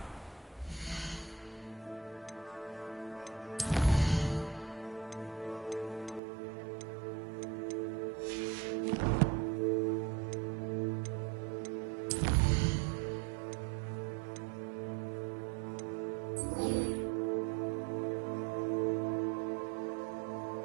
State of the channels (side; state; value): left; drops out; at 6.2 s